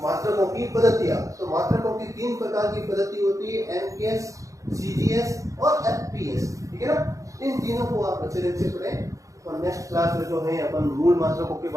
मात्रकों की पद्धतियां। तो मात्रकों की 3 प्रकार की पद्धति होती है, एमकेएस, सीजीएस और एफपीएस, ठीक है ना। इन तीनों को आप अच्छे ढंग से पढ़ें। और नेक्स्ट क्लास में जो है अपन मूल मात्रकों के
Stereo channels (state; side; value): late; left; 0.16 ms